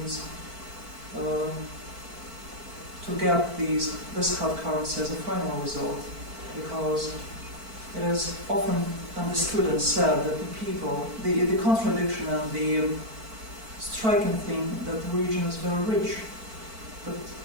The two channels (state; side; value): late; left; 4.5 ms